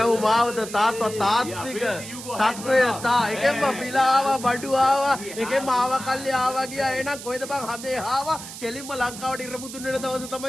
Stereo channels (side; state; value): right; noise; hiss, 12 dB below the sound